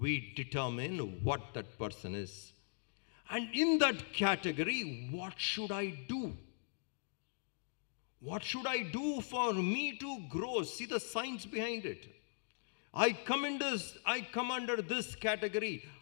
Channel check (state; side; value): silent; right; digital silence